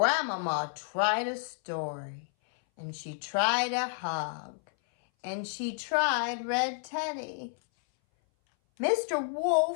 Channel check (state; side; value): silent; right; 57 dB below the other